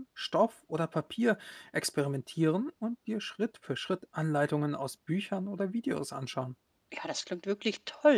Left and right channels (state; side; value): identical; both; correlation 1.00